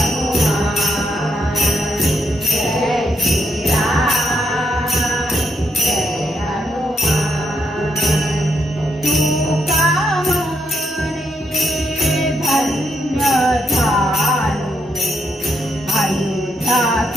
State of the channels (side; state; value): both; normal; correlation 0.78